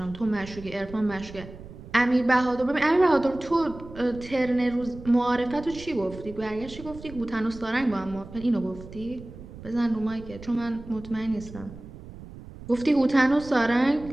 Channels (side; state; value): right; noise; rumble, 15 dB below the sound